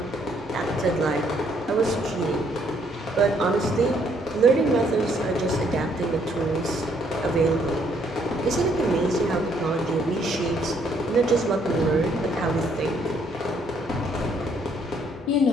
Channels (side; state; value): both; normal; correlation 0.68